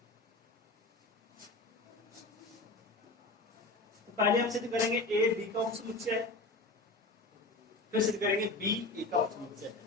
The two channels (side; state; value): right; quieter; 3.0 dB